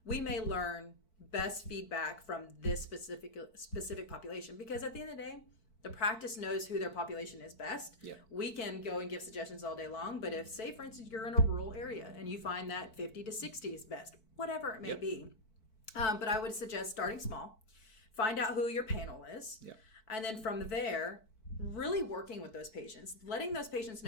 we may learn best feedback from this specific population, because at the end of the day, The practice knows who their population is best. Yeah. We can go and give suggestions all day long, but if, say, for instance, you're in a rural area and you find that 50 to 60 is best, whatever it may be. But I would suggest starting small. Find out who your panel is. Yeah. And then from there, really working with those patients, letting those patients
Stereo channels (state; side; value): late; right; 4.5 ms